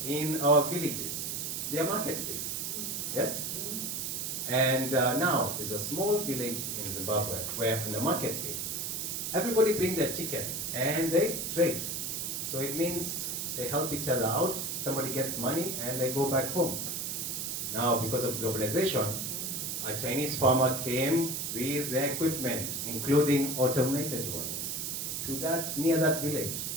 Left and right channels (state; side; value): noise; right; hiss, 3 dB below the sound